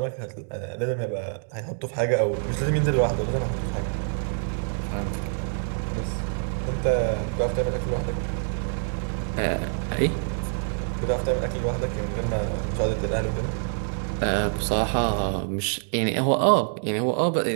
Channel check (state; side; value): silent; left; 61 dB below the other